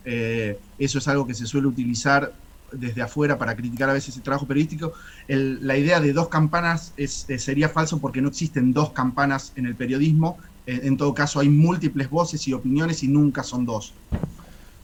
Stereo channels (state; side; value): identical; both; correlation 1.00